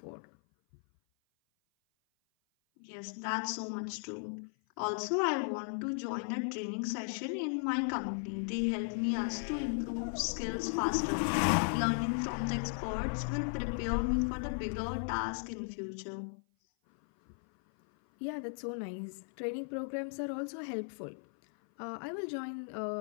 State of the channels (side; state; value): right; silent; 54 dB below the other